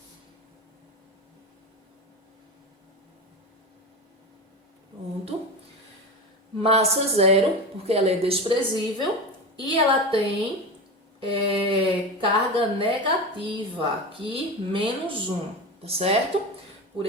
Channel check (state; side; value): normal; both; correlation 0.24